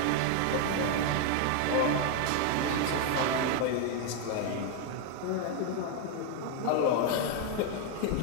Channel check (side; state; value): both; different; correlation 0.00